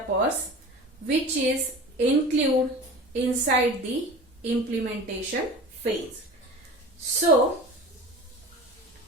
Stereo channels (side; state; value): both; normal; correlation 0.36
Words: which is include inside the implementation phase. So